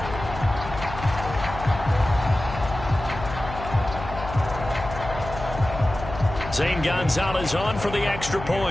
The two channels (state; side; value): noise; left; hum, 10 dB below the sound